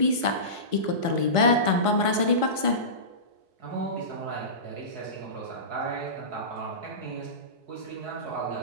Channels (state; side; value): late; left; 4.3 ms